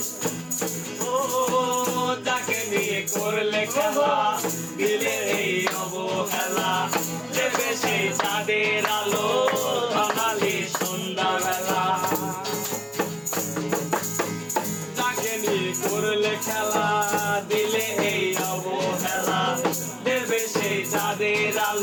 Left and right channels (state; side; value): identical; both; correlation 1.00